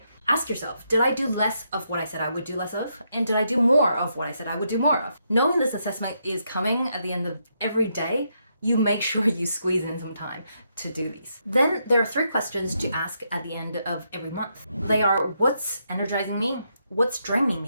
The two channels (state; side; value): inverted; both; correlation -0.79